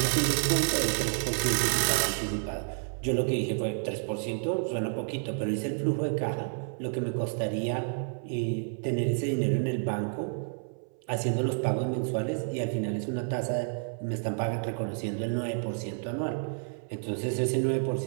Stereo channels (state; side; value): silent; left; 58 dB below the other